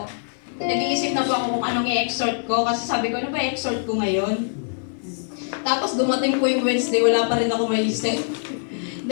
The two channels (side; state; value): right; silent; 56 dB below the other